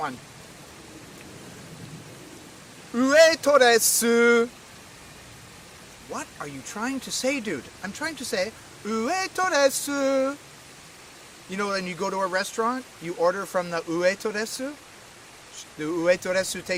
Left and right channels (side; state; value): both; identical; correlation 1.00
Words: Ueto desu. What are you trying to say, dude? I'm trying to say ueto desu. You know, when you go to a restaurant, you order from the ueto desu. The ueto desu